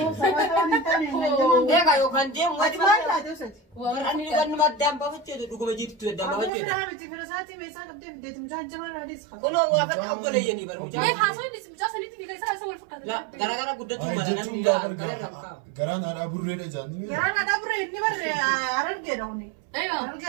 سويتوني تاني إيه كايو كان ديم ما واجب لا دوست أنا نقول ما دام بفتشة دوكو بجيت تو دام ما بفتشة فهمتي فرساتي بيسا قبل بديت مجان جمال راديس خا كله وافق أبولي يعني برا ما مجان يحاسون بس مجاسا نيتي في كيسا أسوي الفكرة لا gara قدتو ما أنا garaan haadha burreedha jaanni garaan ada bure inni barre aran gedawni أيوة aran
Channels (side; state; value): left; drops out; at 6.5 s